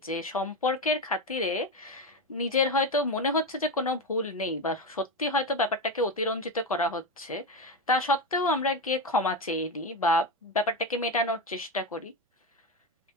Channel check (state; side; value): normal; both; correlation 0.15